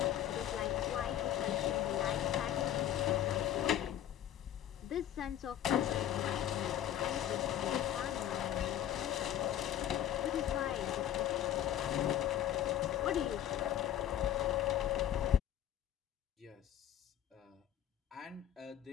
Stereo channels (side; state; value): right; quieter; 11.1 dB